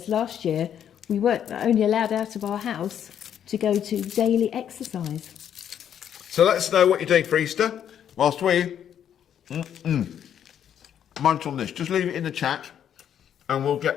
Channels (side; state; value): right; quieter; 9.4 dB